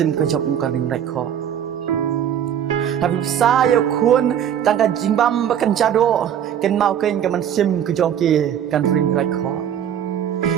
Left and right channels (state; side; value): quieter; left; 9.5 dB